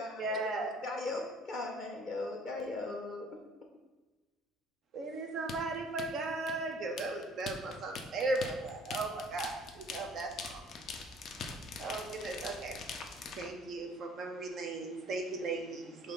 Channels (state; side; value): normal; both; correlation 0.54